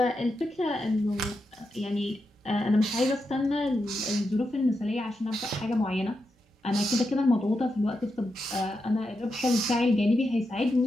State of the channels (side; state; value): both; normal; correlation 0.86